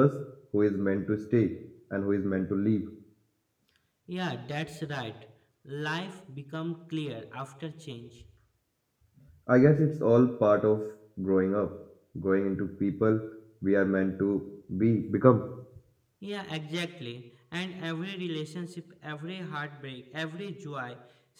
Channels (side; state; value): both; identical; correlation 1.00